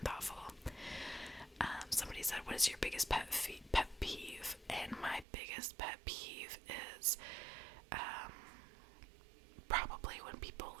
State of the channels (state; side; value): drops out; left; at 5.2 s